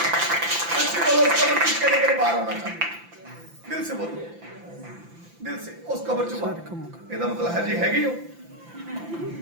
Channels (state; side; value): late; left; 5.9 ms